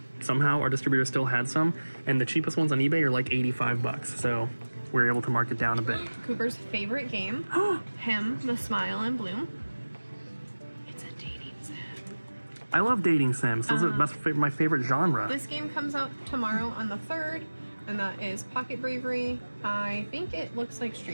Somehow our distributor still had some, and the cheapest ones on eBay are like $85, so we're able to mark it down a bit. Cooper's favorite game, Him, the Smile and Bloom. It's a dating sim. I love dating sims. Those are my favorite genre. This game comes out tomorrow on the 3rd, and that is Pocket Bravery. I think it looks like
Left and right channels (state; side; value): inverted; both; correlation -1.00